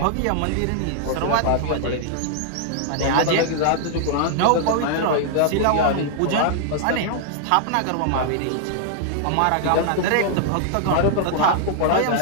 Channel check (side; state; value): both; different; correlation -0.01